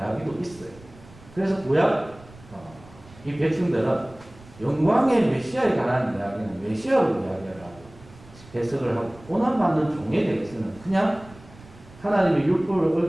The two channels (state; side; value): noise; right; rumble, 22 dB below the sound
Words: 있어요. 그래서 구약 이 백성들은 영광의 메시아에 관한 이야기는 메시아로 이야기를 하고 해석을 하고 고난받는 종에 대해서는 그냥 하나님의 율법을